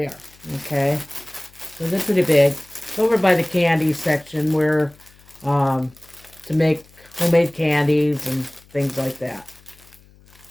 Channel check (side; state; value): left; noise; hum, 27 dB below the sound